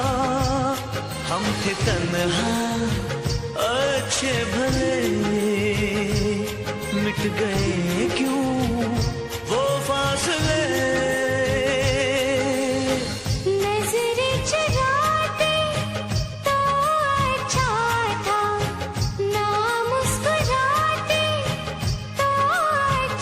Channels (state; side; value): identical; both; correlation 1.00